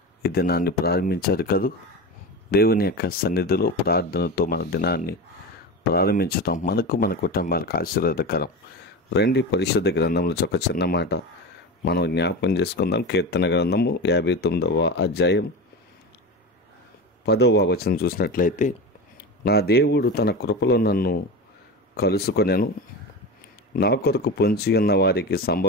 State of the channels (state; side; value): normal; both; correlation 0.25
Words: ఈ దినాన్ని ప్రారంభించారు కదూ. దేవుని యొక్క సన్నిధిలో ప్రార్థనతో మన దినాన్ని ప్రారంభించటం మనకు మన కుటుంబాలకు ఆశీర్వాదకరం. రండి, పరిశుద్ధ గ్రంథంలో ఒక చిన్న మాట మనం జ్ఞాపకం చేసుకుందాం. కీర్తన గ్రంథము 59వ అధ్యాయం 10వ వచనం చూసినట్లయితే, నా దేవుడు తన కృపలో నన్ను కలుసుకొనెను, నా కొరకు పొంచి ఉన్న వారికి